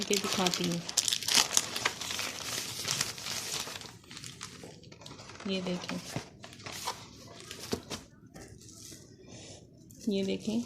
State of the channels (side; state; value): both; identical; correlation 1.00